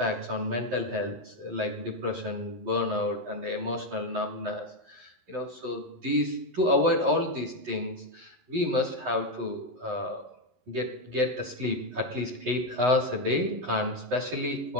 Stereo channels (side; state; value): left; late; 11 ms